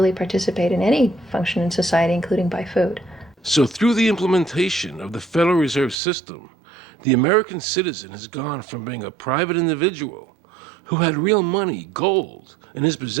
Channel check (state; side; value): drops out; left; at 6.0 s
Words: participate in any function in society, including buy food. So through the implementation of the Federal Reserve System, the American citizen has gone from being a private individual who had real money, gold, in his